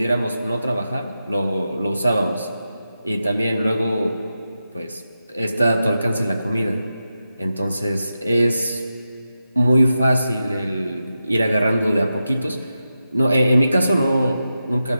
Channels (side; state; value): both; inverted; correlation -0.90